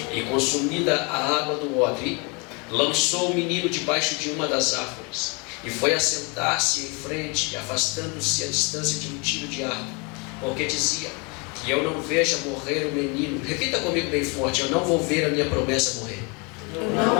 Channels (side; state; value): right; quieter; 31.2 dB